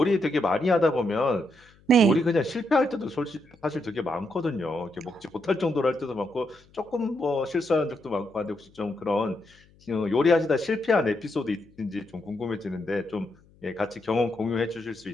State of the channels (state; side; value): noise; left; hum, 29 dB below the sound